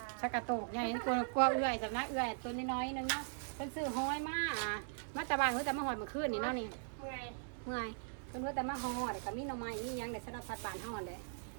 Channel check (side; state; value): left; silent; digital silence